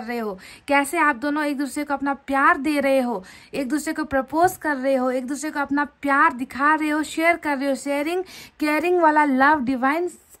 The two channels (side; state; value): both; identical; correlation 1.00